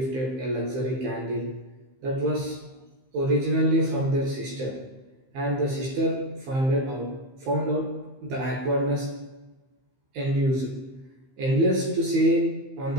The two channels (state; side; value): late; left; 15 ms